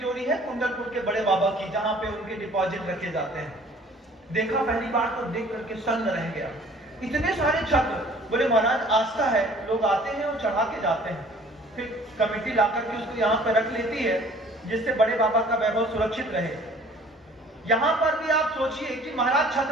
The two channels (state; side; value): normal; both; correlation 0.52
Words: है कुंडलपुर के बड़े बाबा की, जहां पे उनके डिपॉजिट रखे जाते हैं। देखा पहली बार तो देख करके सन्न रह गया, इतने सारे छत्र। बोले महाराज आस्था है, लोग आते हैं और चढ़ा के जाते हैं, फिर कमेटी ला करके उसको यहाँ पे रख लेती है, जिससे बड़े बाबा का वैभव सुरक्षित रहे। यहाँ पर भी आप सोचिए कि महाराज